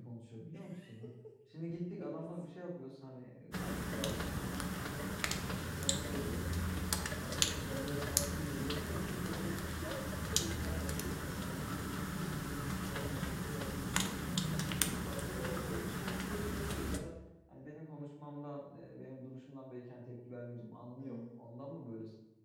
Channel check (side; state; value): both; identical; correlation 1.00